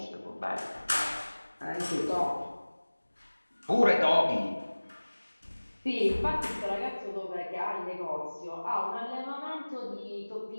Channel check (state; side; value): inverted; both; correlation -1.00